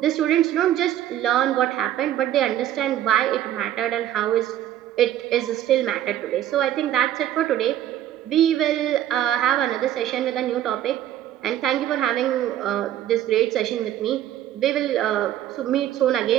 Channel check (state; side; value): quieter; left; 12.0 dB